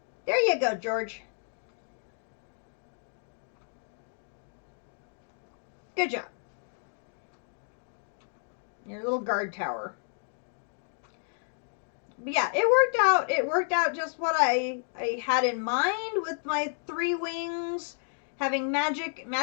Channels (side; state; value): right; silent; digital silence